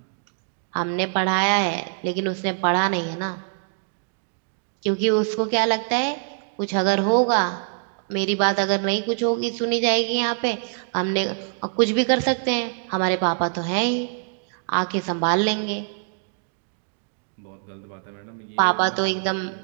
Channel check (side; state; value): left; silent; digital silence